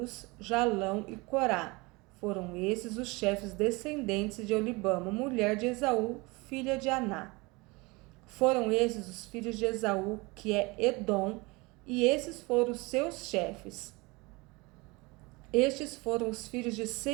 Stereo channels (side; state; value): left; quieter; 25.0 dB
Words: Jalão e Corá. Foram esses os chefes descendentes de Olibama, mulher de Esaú, filha de Aná. Foram esses os filhos de Esaú, que é Edom, e esses foram os seus chefes. Estes foram os filhos de